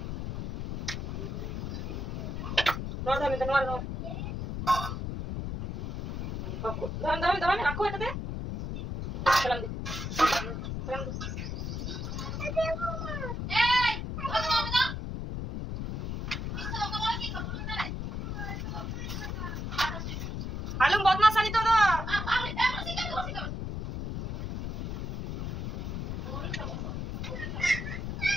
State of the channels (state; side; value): noise; left; rumble, 4 dB below the sound